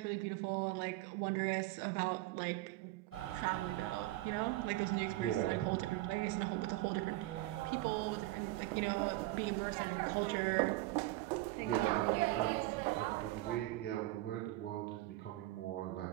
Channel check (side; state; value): left; quieter; 18.0 dB